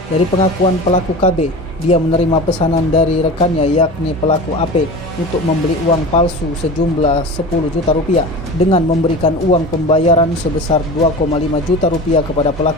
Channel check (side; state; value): both; normal; correlation 0.32